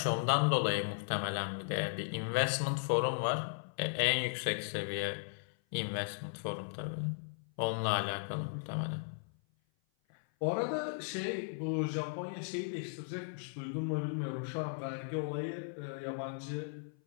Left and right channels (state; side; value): silent; right; 53 dB below the other